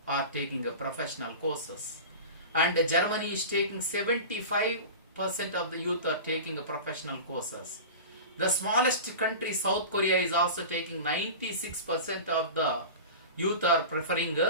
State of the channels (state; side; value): inverted; both; correlation -0.32